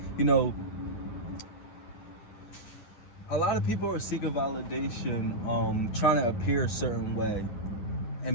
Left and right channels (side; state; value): right; late; 9.6 ms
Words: a lot of people are seeking validation, trying to appear a certain way.